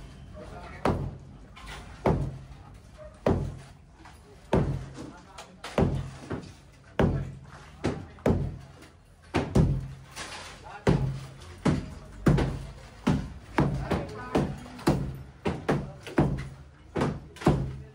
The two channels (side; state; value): both; identical; correlation 1.00